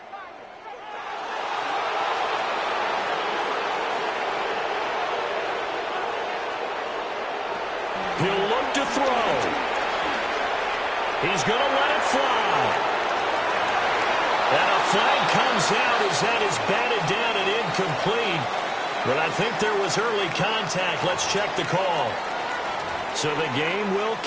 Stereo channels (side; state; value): both; identical; correlation 1.00